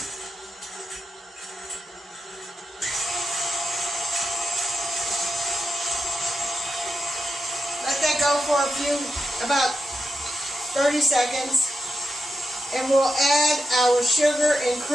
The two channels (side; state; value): both; normal; correlation 0.87